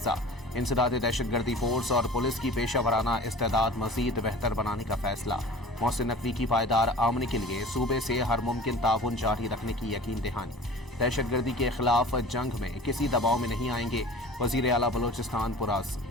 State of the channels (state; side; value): normal; both; correlation 0.42